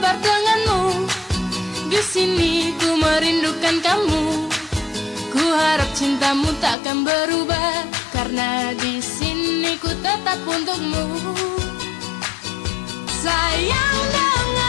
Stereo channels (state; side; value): drops out; right; at 6.8 s